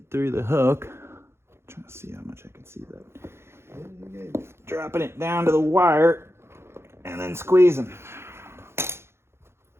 through the hook. Trying to see how much I can see that. Dropping it down to the wire and then squeezing.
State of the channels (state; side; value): late; left; 0.12 ms